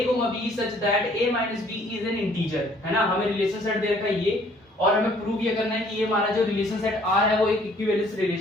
b such that a minus b is an integer, है ना। हमें रिलेशन सेट दे रखा है ये, और हमें प्रूव ये करना है कि ये हमारा जो रिलेशन सेट R है वो एक इक्विवेलेंस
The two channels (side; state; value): both; normal; correlation 0.60